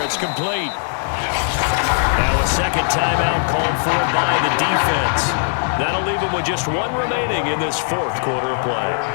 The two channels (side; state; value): right; silent; digital silence